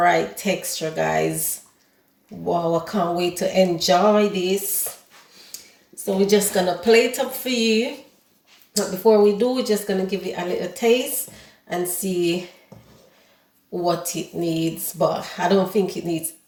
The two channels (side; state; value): both; identical; correlation 1.00